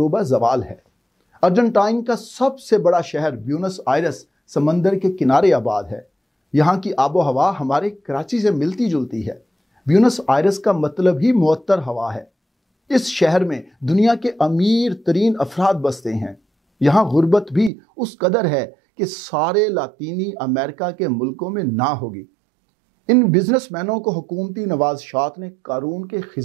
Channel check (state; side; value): drops out; left; at 17.7 s